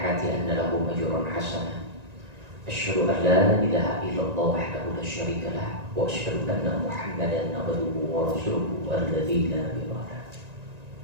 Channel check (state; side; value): late; left; 1.9 ms